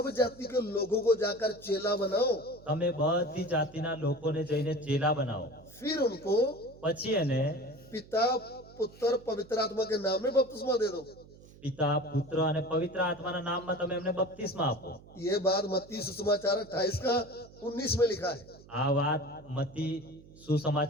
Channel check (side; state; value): right; noise; hum, 22 dB below the sound